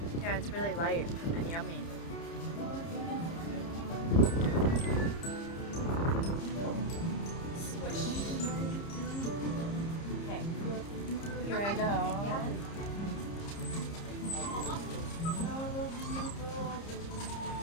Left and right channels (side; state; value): right; late; 30 ms